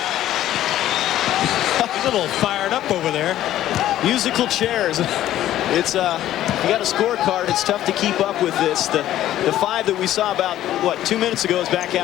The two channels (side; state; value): right; quieter; 13.0 dB